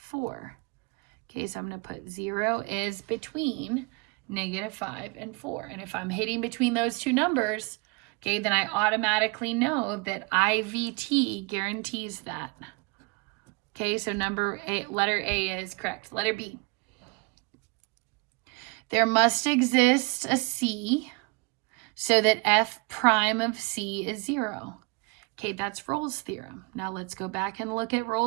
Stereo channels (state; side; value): quieter; left; 30.0 dB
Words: Okay, so I'm going to put 0 is between -5 and 4. And if I'm hitting between those two numbers, okay, then I automatically know that IVT guarantees that. Okay, so letter A is correct. Letter B. There must exist a C so that f prime of C is 0. Okay, that's Rolle's theorem. Now let's go back and look at